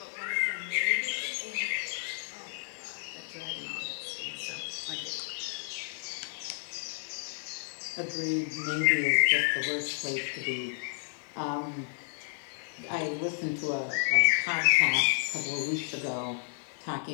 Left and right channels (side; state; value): right; silent; digital silence